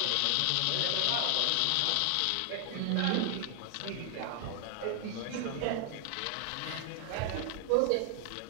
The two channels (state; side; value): different; both; correlation 0.00